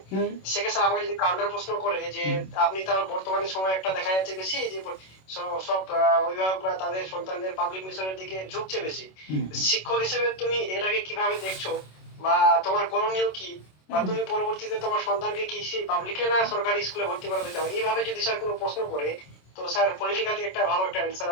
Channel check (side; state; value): right; late; 26 ms